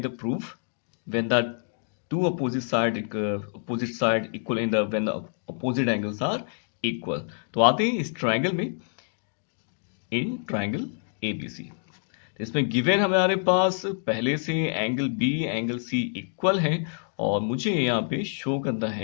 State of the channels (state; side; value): silent; right; digital silence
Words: the proof when the two opposite side equal in the when the opposite angles are equal। तो आते हैं इस ट्राइंगल में, इन ट्राइंगल ABC। इसमें गिवन हमारे पास पहले से angle B angle C equal है, और मुझे यहाँ पे शो करना